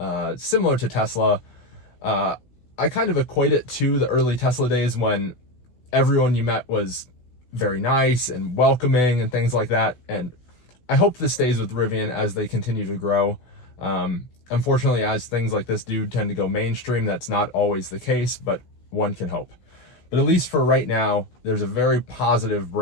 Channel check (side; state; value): right; late; 16 ms